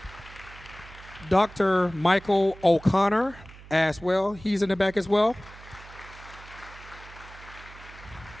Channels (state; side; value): noise; right; hum, 19 dB below the sound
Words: Dr. Michael O'Connor as well. He's in the back as well.